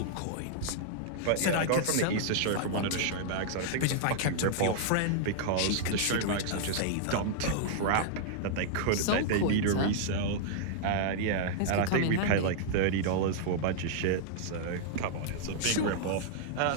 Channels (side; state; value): both; different; correlation -0.01